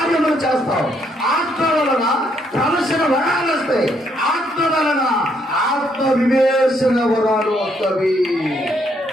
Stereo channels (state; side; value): normal; both; correlation 0.72